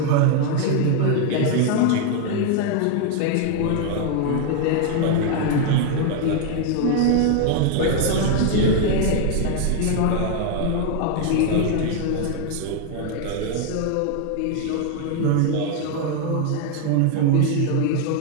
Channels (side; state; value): both; different; correlation 0.01